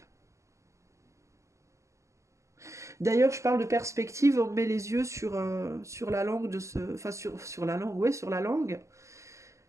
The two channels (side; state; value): left; late; 0.15 ms